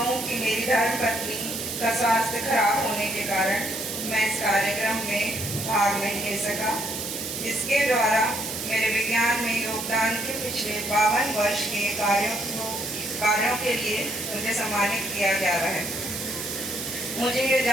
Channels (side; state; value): right; noise; hiss, 6 dB below the sound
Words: कि मेरी धर्मपत्नी का स्वास्थ्य खराब होने के कारण मैं इस कार्यक्रम में भाग नहीं ले सका, जिसके द्वारा मेरे विज्ञान में योगदान के पिछले 52 वर्ष के कार्यों के लिए मुझे सम्मानित किया जा रहा है। मुझे ये